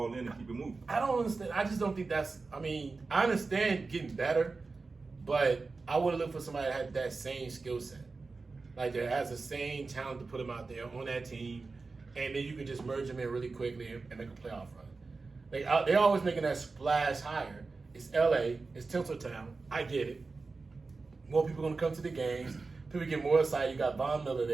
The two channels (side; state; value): left; quieter; 4.0 dB